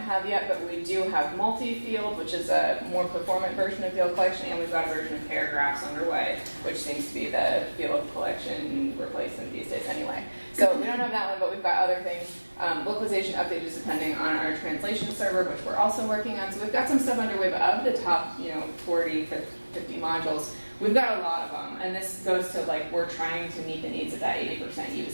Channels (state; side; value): inverted; both; correlation -1.00